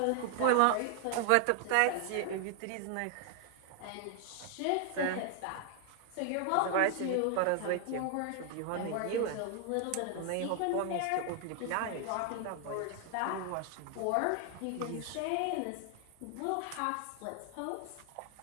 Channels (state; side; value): different; both; correlation 0.00